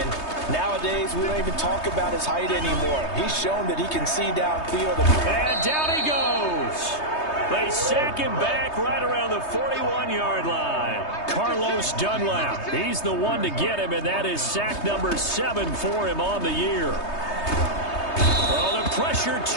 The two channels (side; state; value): right; late; 3.2 ms